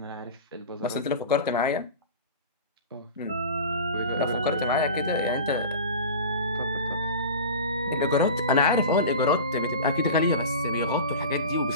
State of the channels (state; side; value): inverted; both; correlation -0.32